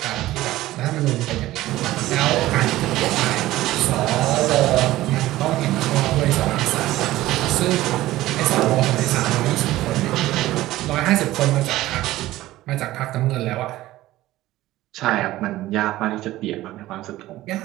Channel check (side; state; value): left; quieter; 16.1 dB